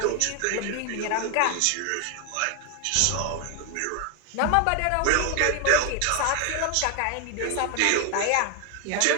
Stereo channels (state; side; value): different; both; correlation 0.01